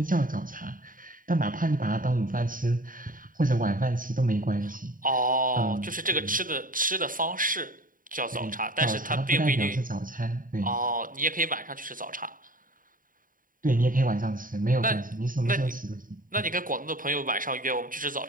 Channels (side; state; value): left; late; 0.40 ms